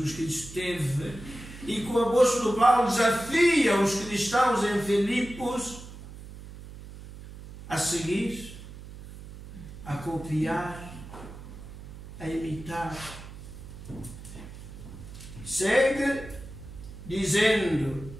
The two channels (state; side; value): noise; right; hum, 14 dB below the sound